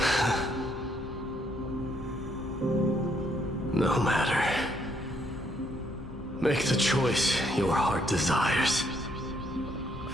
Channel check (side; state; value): both; normal; correlation 0.71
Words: No matter. Make the choice your heart desires.